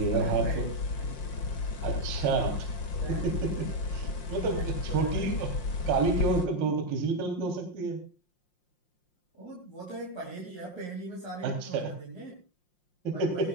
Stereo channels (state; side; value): late; right; 5.6 ms